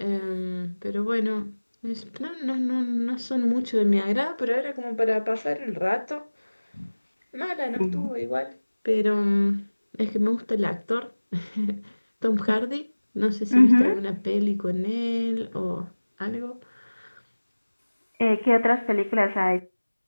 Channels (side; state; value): both; inverted; correlation -1.00